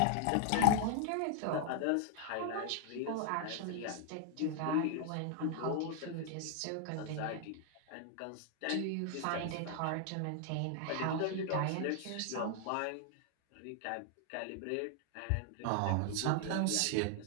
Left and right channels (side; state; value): both; different; correlation 0.00